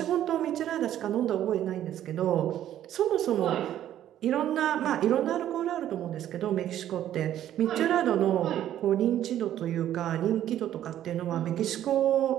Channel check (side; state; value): left; quieter; 11.7 dB